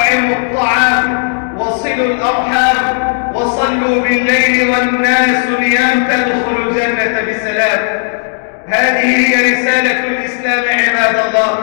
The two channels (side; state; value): right; silent; digital silence